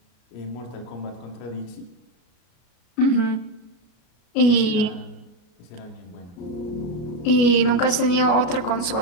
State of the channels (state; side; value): late; right; 33 ms